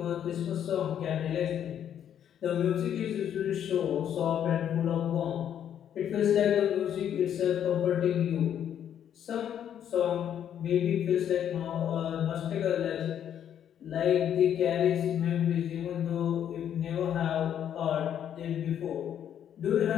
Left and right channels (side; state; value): right; quieter; 9.6 dB